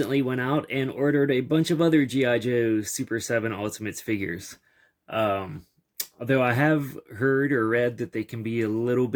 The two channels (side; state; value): both; identical; correlation 1.00